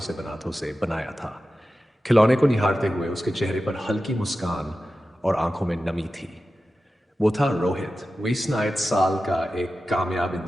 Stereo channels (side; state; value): both; normal; correlation 0.93